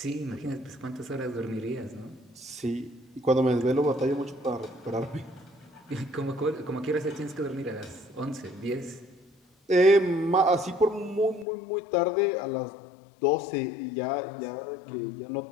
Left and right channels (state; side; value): drops out; right; at 11.5 s